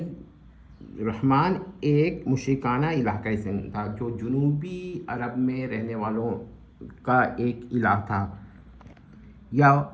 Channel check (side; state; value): both; identical; correlation 1.00